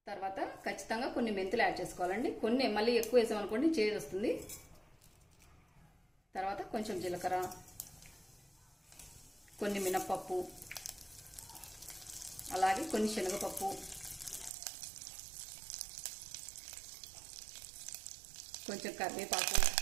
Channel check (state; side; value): drops out; left; at 14.5 s